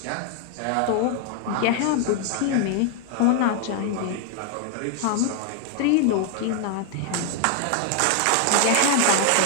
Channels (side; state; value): both; different; correlation 0.00